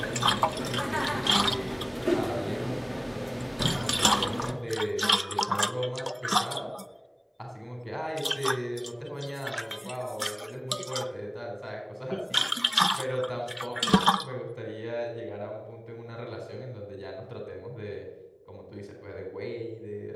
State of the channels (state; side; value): identical; both; correlation 1.00